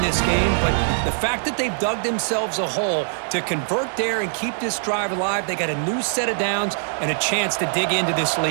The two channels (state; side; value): silent; left; digital silence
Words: this game, but the fact that they've dug themselves a hole to convert there and keep this drive alive, they got a new set of downs and a chance to dig into this